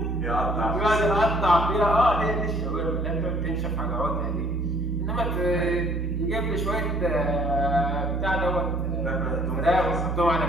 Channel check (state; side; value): normal; both; correlation 0.59